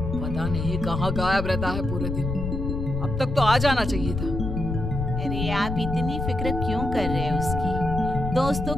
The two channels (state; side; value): noise; left; rumble, 3 dB below the sound